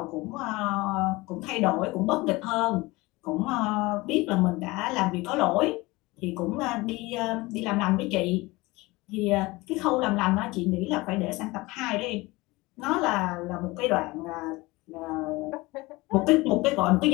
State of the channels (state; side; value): quieter; right; 21.9 dB